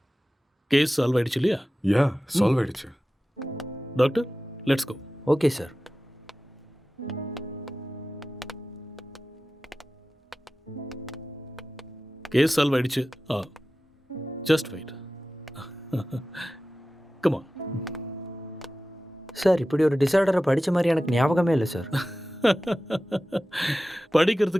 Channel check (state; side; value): normal; both; correlation 0.95